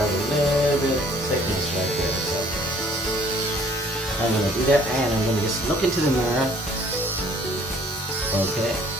a little bit of thickness right there. So I'm gonna do that, and I'm gonna just look into the mirror. Okay.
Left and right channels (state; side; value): normal; both; correlation 0.57